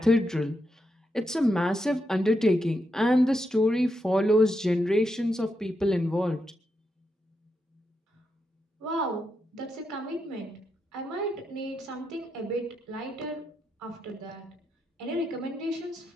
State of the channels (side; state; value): both; normal; correlation 0.84